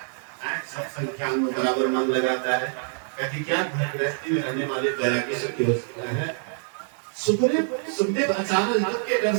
सत्संग ज्ञान में बराबर मन लगाता है। कहती क्या घर गृहस्थी में रहने वाले बैरागी सुखी हो सकता है। सुखदेव अचानक के डर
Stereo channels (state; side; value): silent; left; digital silence